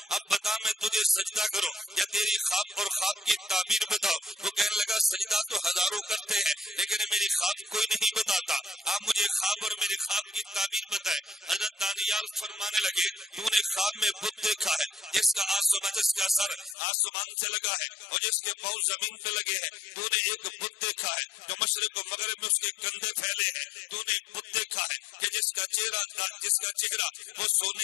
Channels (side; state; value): right; drops out; at 16.8 s